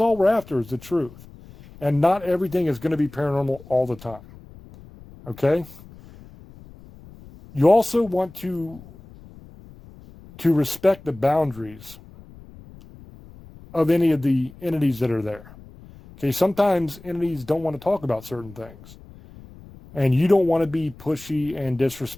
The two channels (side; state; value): left; noise; rumble, 20 dB below the sound